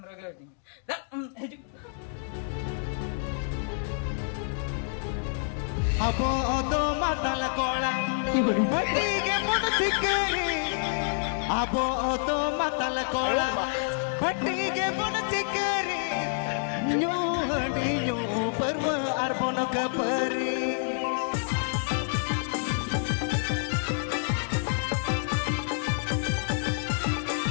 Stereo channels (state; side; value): silent; right; digital silence